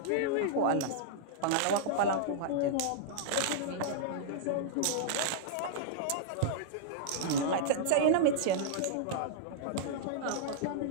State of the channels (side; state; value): both; different; correlation -0.02